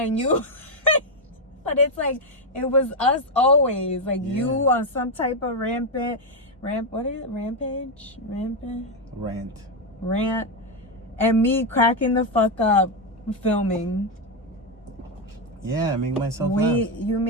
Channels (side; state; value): both; normal; correlation 0.04